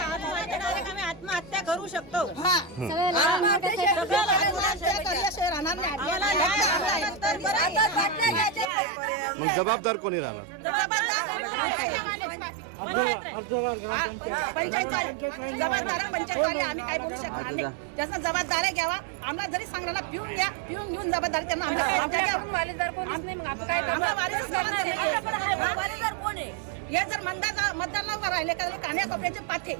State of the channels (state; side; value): drops out; left; at 8.7 s